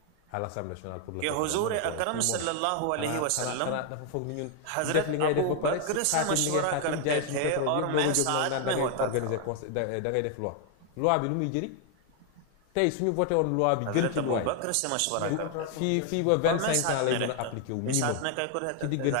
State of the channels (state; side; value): different; both; correlation 0.00